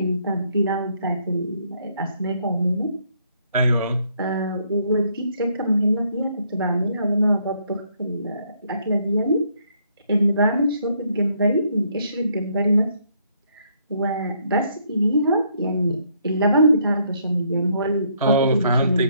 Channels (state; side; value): inverted; both; correlation -0.70